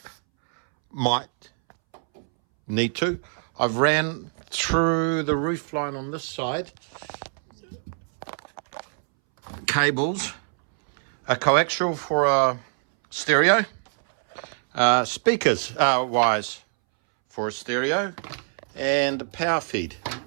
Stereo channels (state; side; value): silent; left; 62 dB below the other